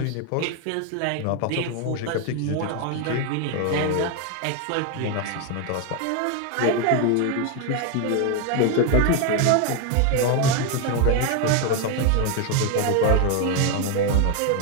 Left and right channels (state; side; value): different; both; correlation 0.01